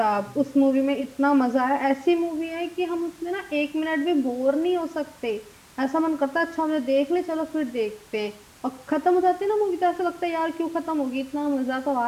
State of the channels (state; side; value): identical; both; correlation 1.00